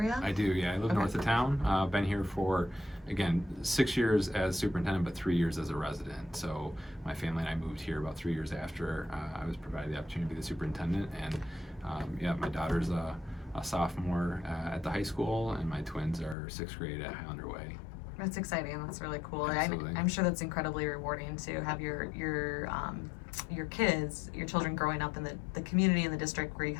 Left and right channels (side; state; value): right; drops out; at 16.4 s